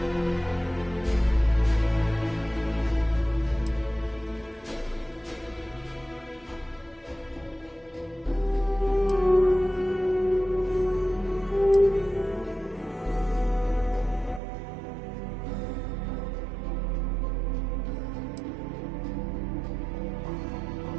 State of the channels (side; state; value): left; drops out; at 14.4 s